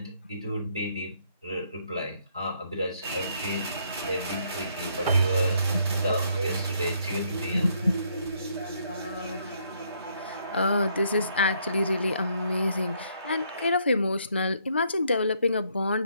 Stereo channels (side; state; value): both; inverted; correlation -0.70